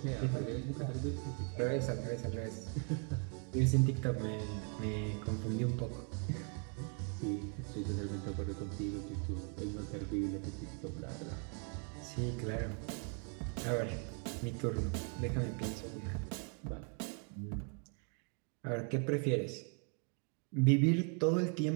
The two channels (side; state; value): left; quieter; 39.6 dB